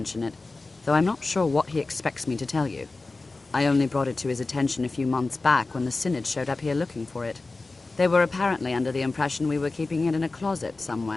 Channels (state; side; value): quieter; right; 3.5 dB